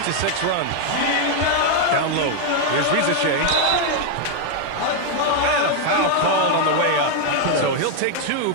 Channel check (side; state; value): both; different; correlation 0.00